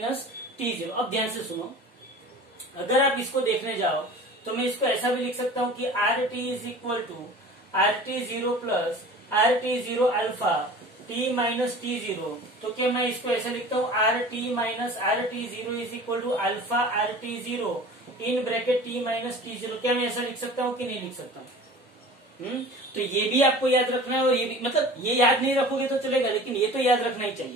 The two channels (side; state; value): both; normal; correlation 0.41